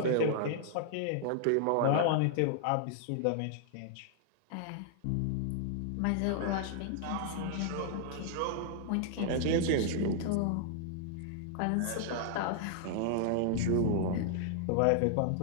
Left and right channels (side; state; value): both; different; correlation 0.00